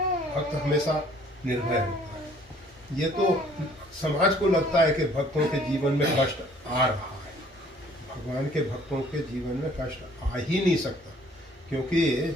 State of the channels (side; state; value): both; normal; correlation 0.58